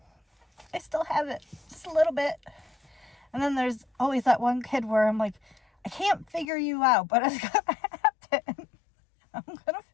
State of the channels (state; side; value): drops out; right; at 6.5 s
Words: I still have it just a little bit. And then there's always that one kid where I'm like, I can't figure you out, but it's gonna happen. I'm gonna